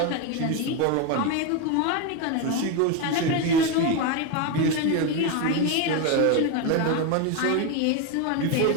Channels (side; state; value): both; different; correlation 0.03